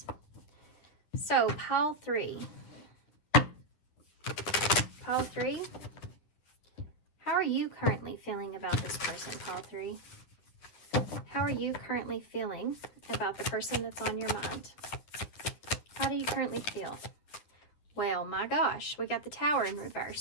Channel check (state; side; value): late; right; 10 ms